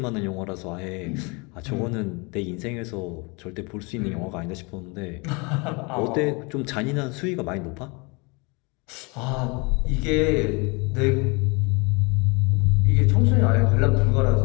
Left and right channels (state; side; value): quieter; right; 29.3 dB